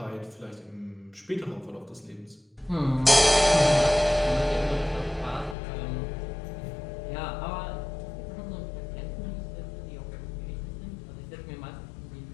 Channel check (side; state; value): right; drops out; at 5.6 s